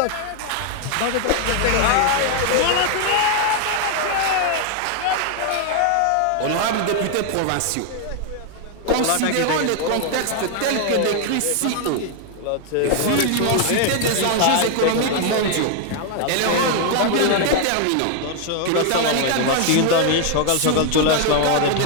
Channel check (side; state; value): both; different; correlation 0.00